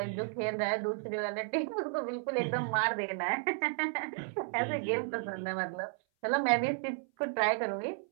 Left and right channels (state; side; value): silent; left; 56 dB below the other